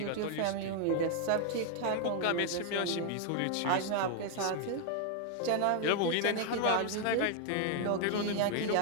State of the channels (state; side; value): different; both; correlation 0.00